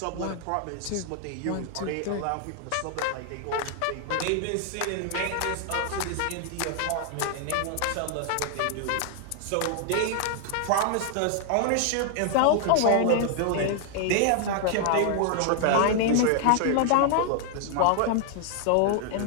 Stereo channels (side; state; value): both; different; correlation 0.00